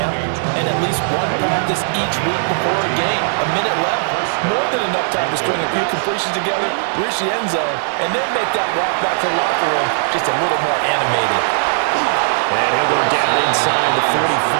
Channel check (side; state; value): left; silent; digital silence